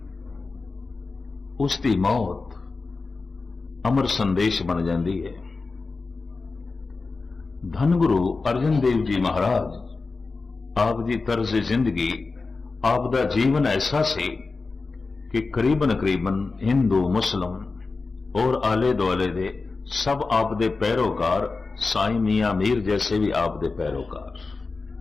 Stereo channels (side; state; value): right; quieter; 4.0 dB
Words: उसकी मौत अमर संदेश बन जाती है। धन गुरु अर्जन देव जी महाराज, आप दी तर्ज जिंदगी, आप दा जीवन ऐसा सी कि करीबन करीबन हिंदू मुस्लिम और आले दुआले दे सब आप दे पैरोकार, साईं मियां मीर जैसे भी आप दे पैरोकार।